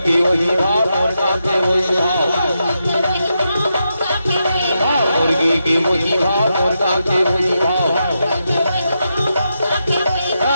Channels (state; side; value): inverted; both; correlation -0.85